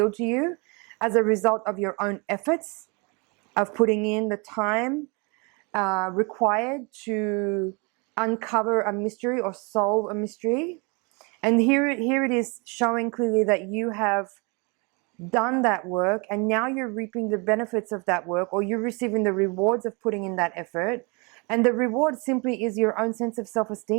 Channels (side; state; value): left; quieter; 30.9 dB